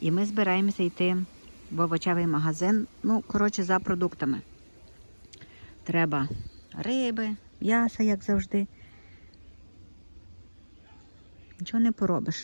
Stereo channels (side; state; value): both; inverted; correlation -1.00